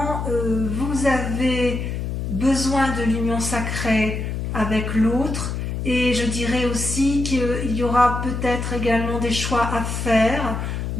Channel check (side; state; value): left; noise; hum, 3 dB below the sound